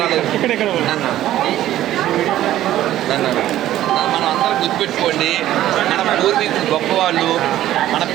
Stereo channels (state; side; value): quieter; left; 13.4 dB